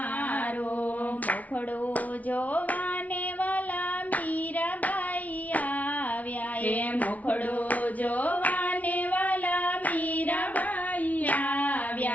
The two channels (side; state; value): right; late; 0.071 ms